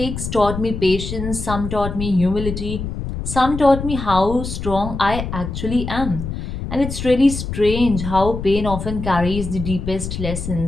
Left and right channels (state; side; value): noise; left; rumble, 6 dB below the sound